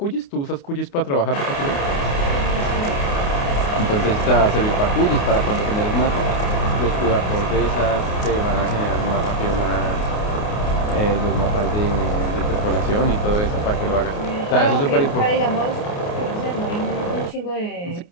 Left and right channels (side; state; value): right; late; 29 ms